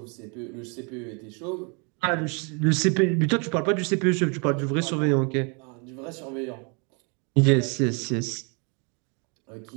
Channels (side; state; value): left; quieter; 34.6 dB